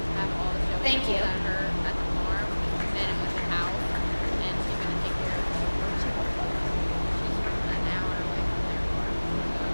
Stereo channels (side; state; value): both; inverted; correlation -1.00